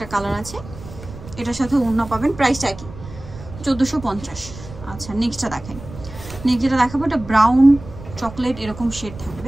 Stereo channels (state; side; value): noise; right; rumble, 14 dB below the sound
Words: কালার আছে, এটার সাথে ওড়না পাবেন, প্রাইসটা কি? 1450। আচ্ছা, নেক্সটটা দেখাই। নেক্সট যেটা দেখাবো, এটা ব্রাউন চকলেট এরকম শেড